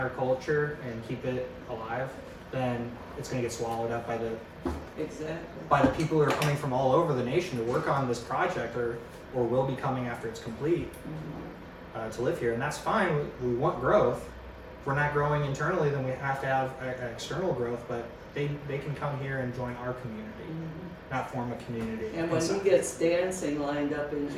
culture and keep it alive, then it's gonna get swallowed up by the Exactly. people who are coming from all over the nation to work on this project, or will be coming after it's complete, Mhm. to live here, and that's fine. We want growth. If we're not growing internally, then we have to have external growth, but they can come here and join our community, Mhm. not form a community. And when he inside. gets dancing lined up in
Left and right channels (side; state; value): both; identical; correlation 1.00